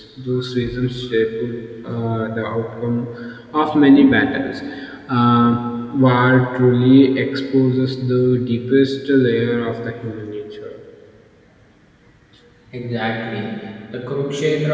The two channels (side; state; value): both; identical; correlation 1.00